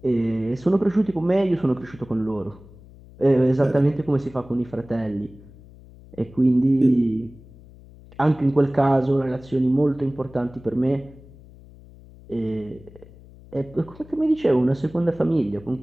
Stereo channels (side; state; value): left; noise; hum, 22 dB below the sound